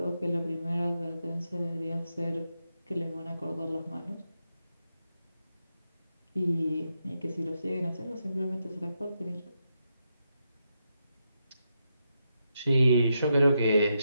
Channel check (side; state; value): both; inverted; correlation -0.84